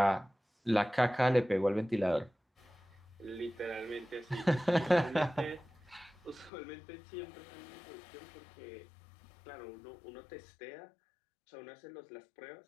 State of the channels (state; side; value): drops out; right; at 6.5 s